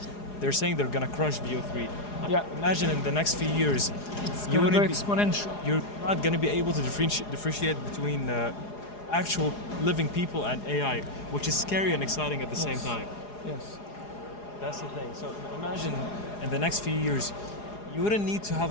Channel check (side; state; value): right; late; 4.8 ms